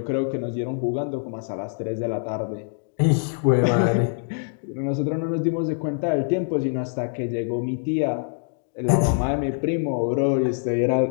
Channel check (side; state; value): right; silent; digital silence